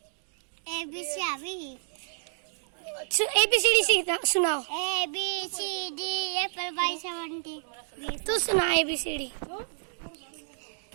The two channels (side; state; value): left; silent; 58 dB below the other